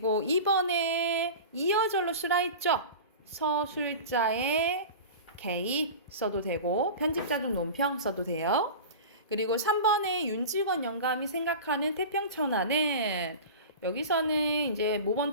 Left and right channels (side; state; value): both; inverted; correlation -0.32